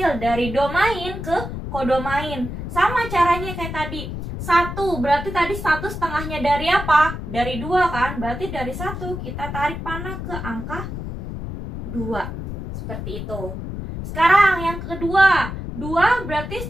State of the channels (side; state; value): left; noise; rumble, 7 dB below the sound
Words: dari domain ke kodomain. Sama caranya kayak tadi. 1 berarti tadi 1/2-nya dari apa? Dari 2 kan? Berarti dari 1 kita tarik panah ke angka 2. Seperti itu. Sekarang yang kedua, 2 berarti